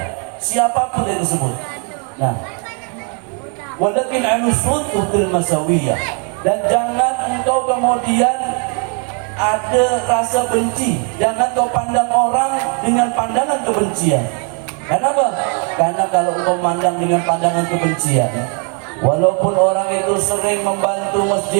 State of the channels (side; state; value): left; quieter; 39.6 dB